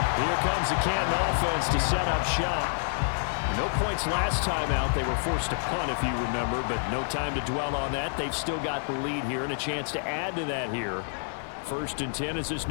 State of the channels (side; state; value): right; silent; digital silence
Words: Here comes the Canton offense to set up shop. No points last time out. They were forced to punt, if you remember, but no time to dwell on that. They've still got the lead here and a chance to add to that here. 1st and 10 as this